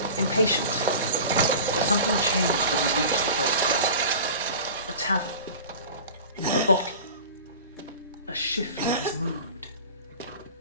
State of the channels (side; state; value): both; inverted; correlation -0.37